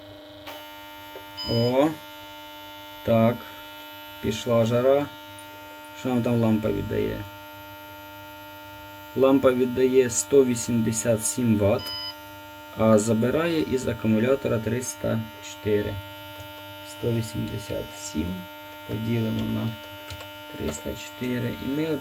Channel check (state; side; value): identical; both; correlation 1.00